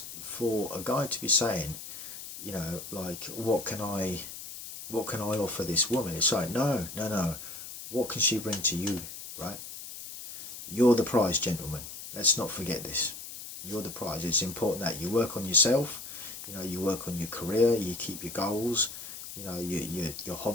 for a guy to be saying, you know, like, what can I offer this woman? It's like, no. What can she bring to you, right? You're the prize, gentlemen. Let's not forget this. You're the prize. It's important that you work on yourself. You know, you work on your career. You keep your goals. You know, your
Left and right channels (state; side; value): noise; left; hiss, 11 dB below the sound